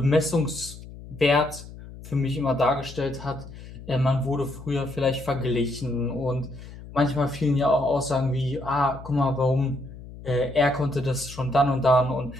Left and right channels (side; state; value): left; noise; hum, 15 dB below the sound